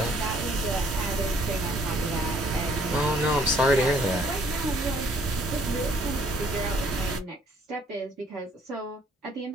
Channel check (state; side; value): normal; both; correlation 0.62